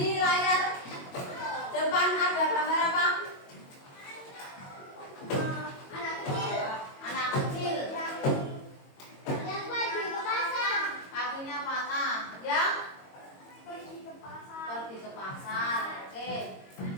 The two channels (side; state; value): right; late; 22 ms